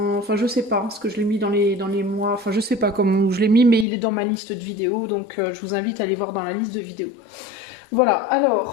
je sais pas, parce que je l'ai mis dans les mois, enfin je sais pas comment je l'ai mis, mais il est dans ma liste de vidéos, donc je vous invite à aller voir dans la liste de vidéos. Voilà,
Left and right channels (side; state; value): right; drops out; at 3.9 s